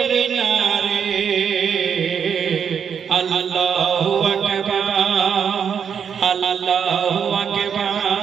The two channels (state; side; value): quieter; left; 7.4 dB